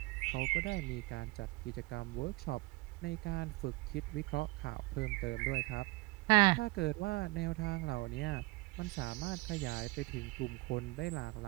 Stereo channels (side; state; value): left; quieter; 23.6 dB